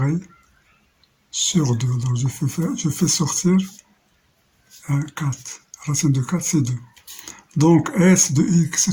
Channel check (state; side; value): identical; both; correlation 1.00